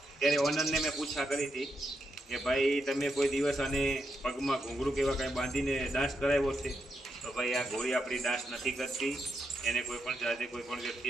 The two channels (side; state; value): both; normal; correlation 0.83